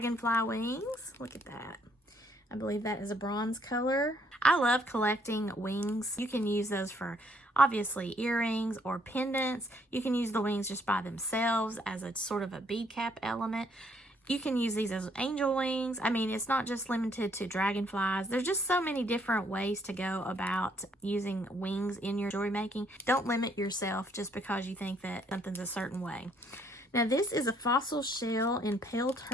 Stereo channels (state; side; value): normal; both; correlation 0.68